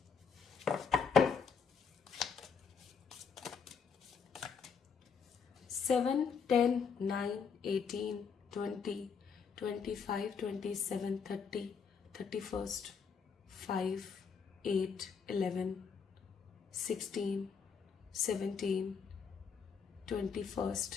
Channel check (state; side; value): quieter; right; 6.1 dB